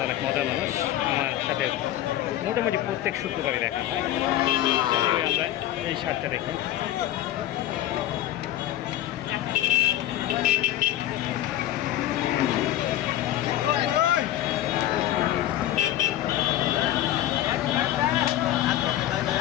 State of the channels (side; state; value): right; quieter; 13.2 dB